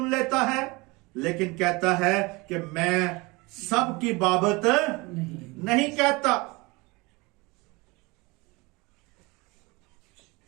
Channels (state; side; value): quieter; left; 24.9 dB